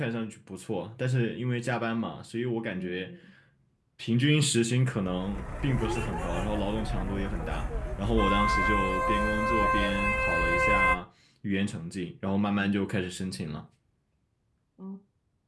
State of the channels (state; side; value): identical; both; correlation 1.00